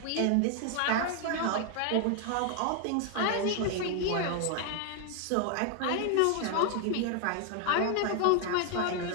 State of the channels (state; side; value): different; both; correlation 0.01